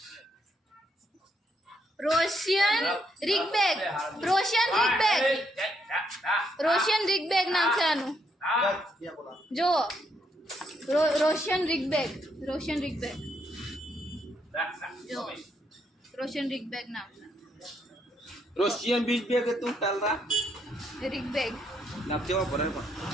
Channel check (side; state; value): both; normal; correlation 0.75